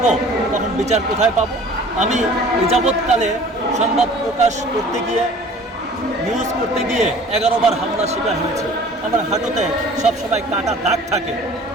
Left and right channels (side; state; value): both; normal; correlation 0.48